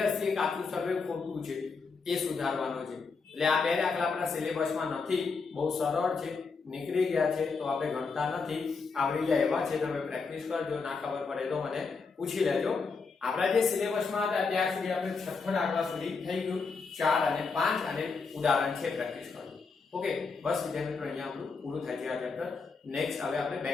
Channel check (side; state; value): right; quieter; 4.7 dB